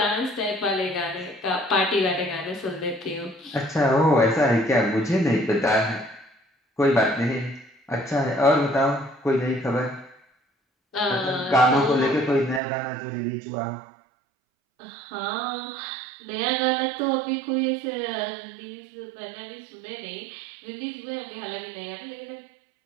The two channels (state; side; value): drops out; left; at 12.6 s